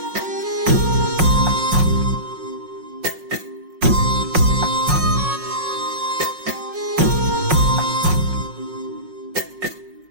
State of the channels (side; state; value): left; late; 5.5 ms